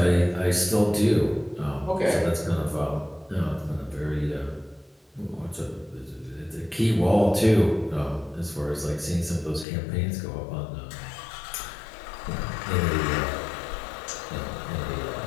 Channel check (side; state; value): right; drops out; at 9.7 s